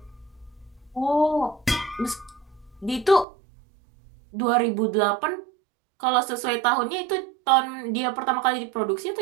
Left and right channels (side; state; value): left; drops out; at 3.2 s